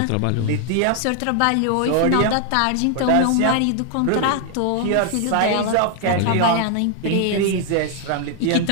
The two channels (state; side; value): different; both; correlation 0.00